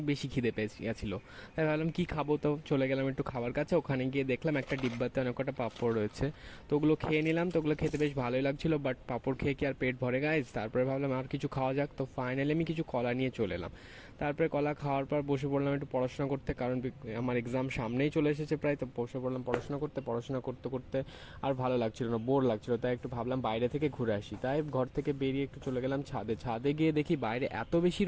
বেশি খিদে পেয়েছিল। তাই ভাবলাম কি খাবো, তো চলে গেলাম একটু খাবার কাছে। ওখানে গিয়ে দেখলাম একটা ডিব্বাতে অনেক কটা পাঁপড় রয়েছে। তো ওগুলো খেয়ে নিলাম। তো ওগুলো খেতে বেশ ভালোই লাগছিল, বাট পাঁপড় খেয়ে কি আর পেট ভরে গাইজ? তারপরে ভাবলাম আর কিছু খাওয়া যাক। তো ফাইনালি আমি কিছু কলা নিয়ে চলে এলাম। তারপরে কলা খাওয়ার পর বসে পড়লাম একটু পড়াশোনা করতে, কারণ আমার এক্সাম সামনেই চলে এসেছে প্রায়। তো বসে পড়লাম পড়াশোনা করতে করতে আর ভালো লাগছিল না, বোর লাগছিল। তাই একটু ভাবলাম বাইরে থেকে ঘুরে আসি। তাই ঘর থেকে বেরিয়ে একটু চলে গেলাম ছাদে গিয়ে দেখি বাইরে এত বেশি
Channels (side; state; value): both; identical; correlation 1.00